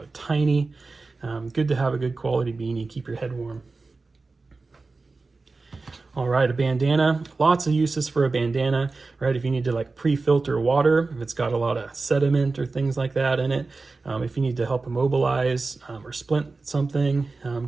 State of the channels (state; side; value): quieter; left; 3.8 dB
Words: tiny. Good to have a good quality beanie, keep your head warm. All right, a bandana, lots of uses for a bandana, right? If you need to like pre-filter water, if it's got a lot of sediment or things like that in it, if you need to help immobilize or splint something,